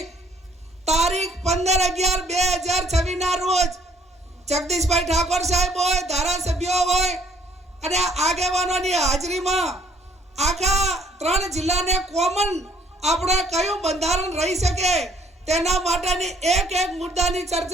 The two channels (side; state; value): both; normal; correlation 0.62